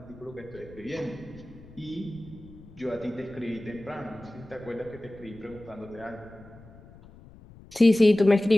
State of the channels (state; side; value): noise; left; rumble, 21 dB below the sound